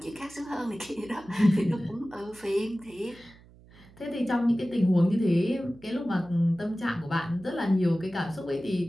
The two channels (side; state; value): right; noise; hum, 24 dB below the sound